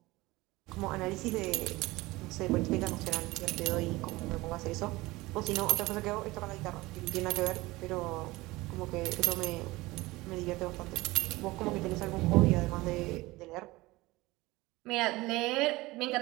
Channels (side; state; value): left; quieter; 20.4 dB